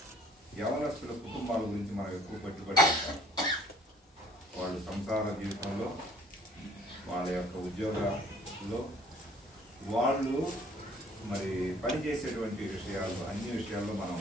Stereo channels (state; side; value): normal; both; correlation 0.56